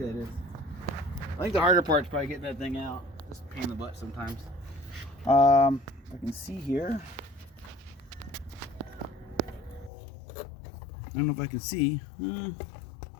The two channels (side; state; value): right; drops out; at 9.9 s